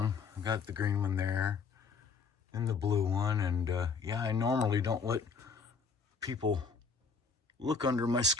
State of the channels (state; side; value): quieter; right; 5.2 dB